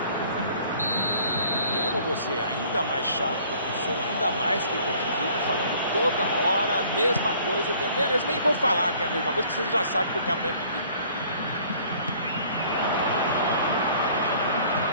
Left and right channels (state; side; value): inverted; both; correlation -0.55